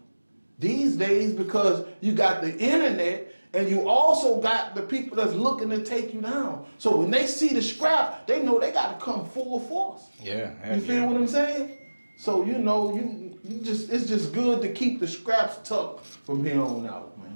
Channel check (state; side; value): inverted; both; correlation -1.00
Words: these days, because you got the internet and you also got the people that's looking to take you down. So when they see the scrap, they know they got to come full force. Yeah. You feel what I'm saying? So, you know, it's just good to keep the scraps tucked from here on out, man.